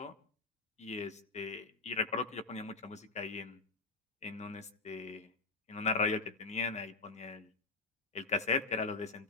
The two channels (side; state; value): right; quieter; 3.8 dB